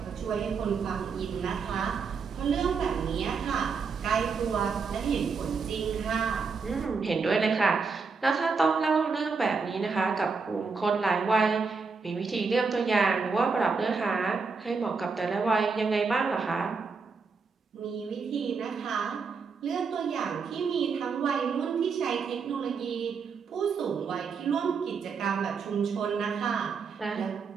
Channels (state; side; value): quieter; left; 5.0 dB